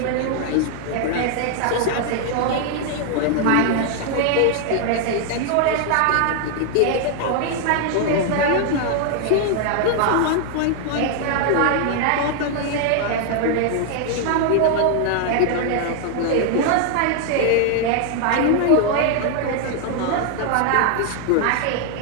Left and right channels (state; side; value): different; both; correlation 0.00